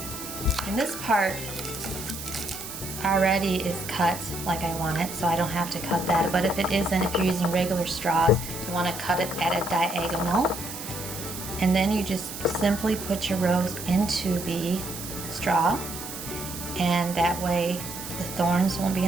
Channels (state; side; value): noise; right; hiss, 9 dB below the sound